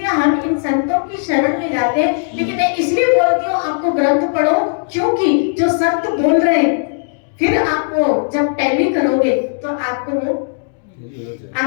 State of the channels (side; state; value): right; silent; digital silence